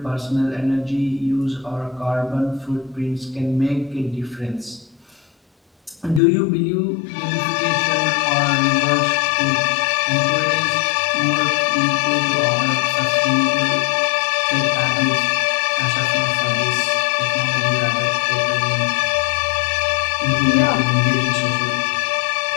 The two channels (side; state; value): right; drops out; at 6.2 s